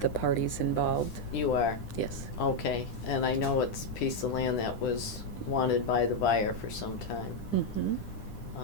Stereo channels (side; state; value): right; late; 10 ms